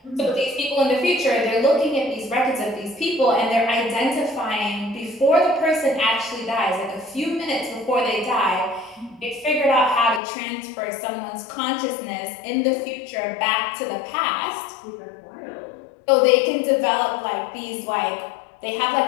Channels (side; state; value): right; drops out; at 10.2 s